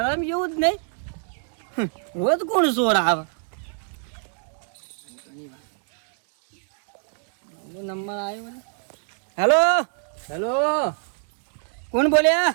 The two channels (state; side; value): silent; left; 62 dB below the other